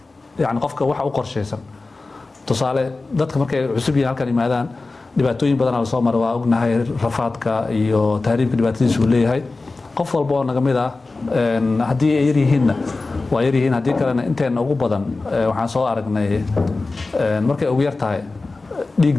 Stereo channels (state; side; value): quieter; right; 3.5 dB